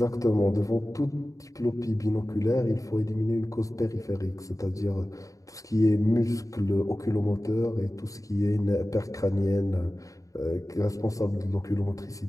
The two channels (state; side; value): late; right; 0.16 ms